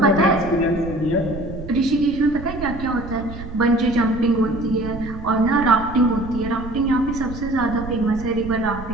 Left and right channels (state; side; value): noise; right; rumble, 12 dB below the sound